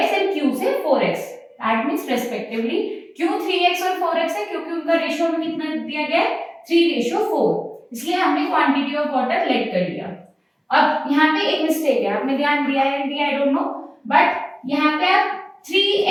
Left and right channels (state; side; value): identical; both; correlation 1.00